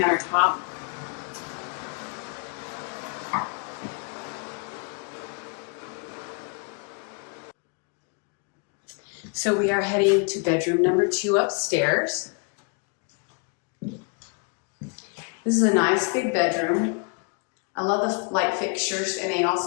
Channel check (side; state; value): right; quieter; 35.4 dB